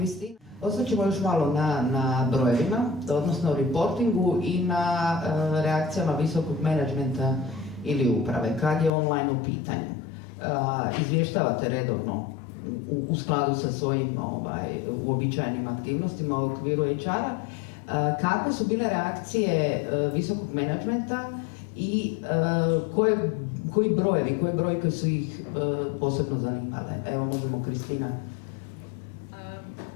Ostat ćemo još malo na brojevima, odnosno reportingu i na reakcijama visokog menadžmenta ili uprave, kad je online u pitanju. Izvještavate redovno u skladu sa svojim uobičajenim aktivnostima u okviru HR-a. Kakve su bile reakcije visokog menadžmenta i koji brojke su ih posebno zanimale? Evo, možemo Kristina.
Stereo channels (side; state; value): right; drops out; at 8.9 s